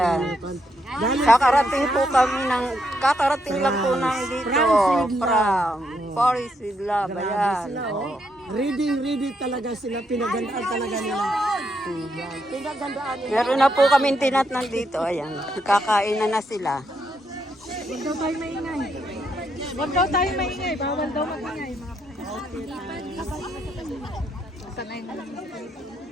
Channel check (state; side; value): normal; both; correlation 0.78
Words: Galing Kakarating lang po ng dito. From Paris with Love. Ayan. sila, oh. Ready talaga sila. Pinagandaan talaga nila. Yan. Pinagandaan nila. Meron na po kami tinatnan dito. Ayan. Kakain na sila. Huwag daw tayo maingay. Huwag daw tayo maingay. Bawal daw magingay.